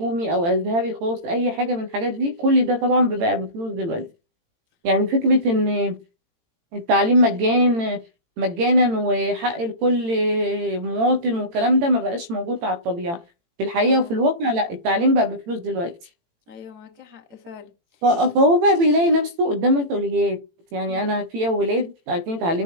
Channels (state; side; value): late; left; 18 ms